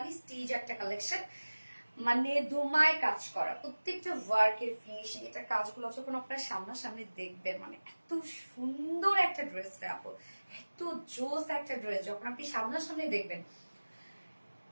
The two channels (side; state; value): both; inverted; correlation -1.00